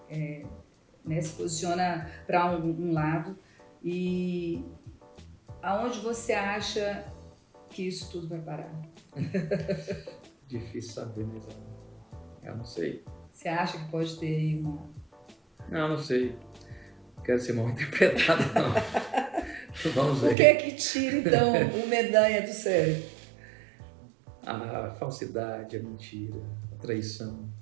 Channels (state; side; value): drops out; left; at 20.4 s